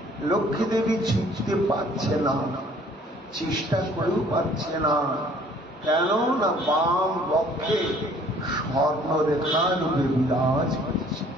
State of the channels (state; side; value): normal; both; correlation 0.56